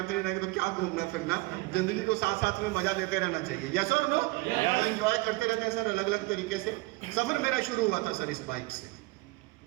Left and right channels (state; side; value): quieter; left; 22.8 dB